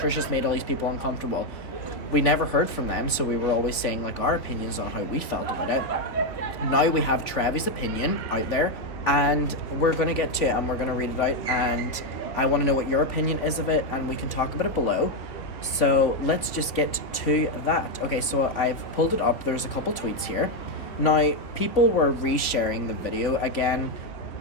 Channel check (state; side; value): late; right; 3.2 ms